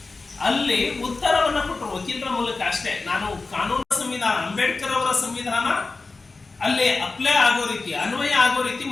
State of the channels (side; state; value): right; quieter; 3.8 dB